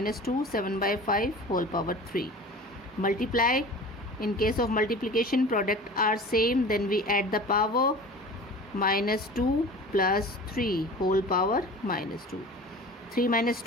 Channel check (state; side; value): normal; both; correlation 0.39